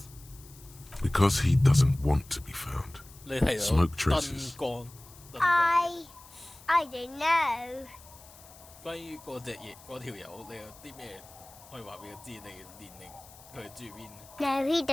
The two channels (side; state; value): left; noise; hiss, 21 dB below the sound